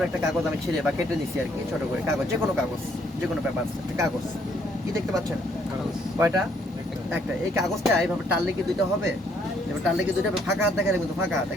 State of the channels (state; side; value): normal; both; correlation 0.68